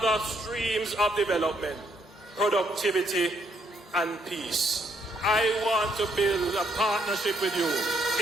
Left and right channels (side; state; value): both; normal; correlation 0.72